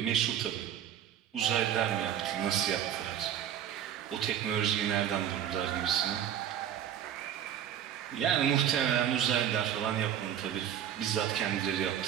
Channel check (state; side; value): quieter; left; 10.0 dB